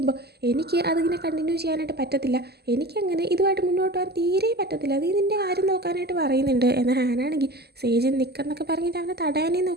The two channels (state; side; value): late; left; 0.47 ms